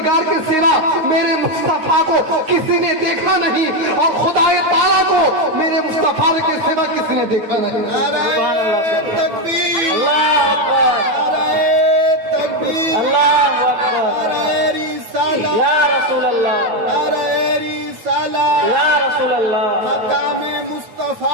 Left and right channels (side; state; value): left; late; 9.2 ms